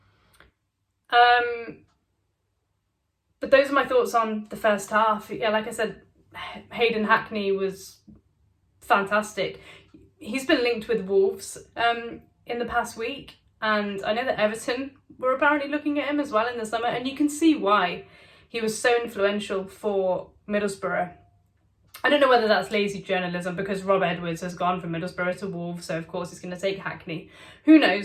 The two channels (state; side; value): identical; both; correlation 1.00